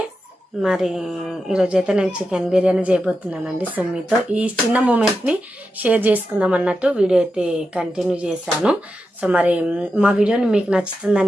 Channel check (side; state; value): both; normal; correlation 0.89